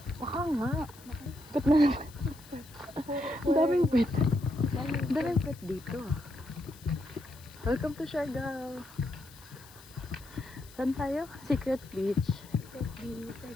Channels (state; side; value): noise; left; hiss, 21 dB below the sound